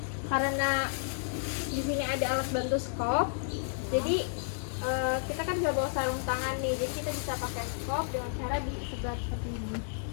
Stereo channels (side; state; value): right; silent; digital silence